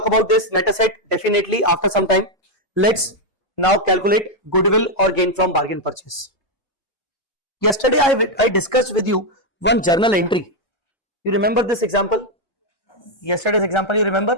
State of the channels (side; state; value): right; late; 1.3 ms